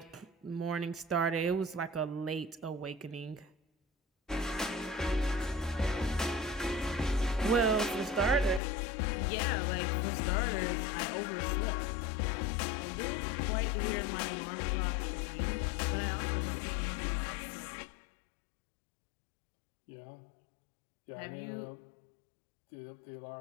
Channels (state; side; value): drops out; right; at 8.6 s